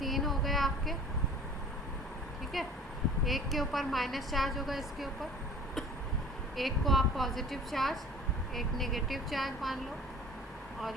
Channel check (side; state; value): both; normal; correlation 0.45